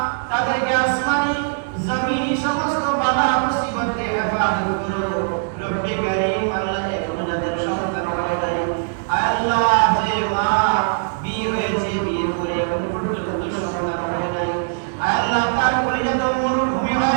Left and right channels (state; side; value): silent; left; 65 dB below the other